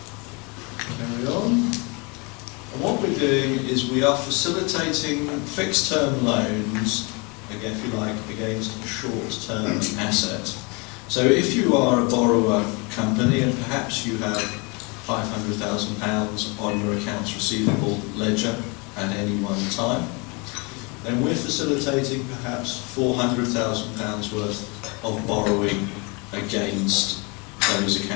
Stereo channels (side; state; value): right; quieter; 30.2 dB